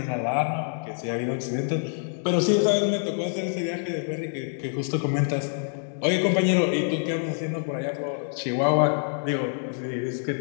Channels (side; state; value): right; silent; digital silence